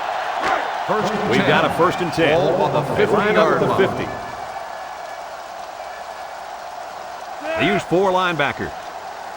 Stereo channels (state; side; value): identical; both; correlation 1.00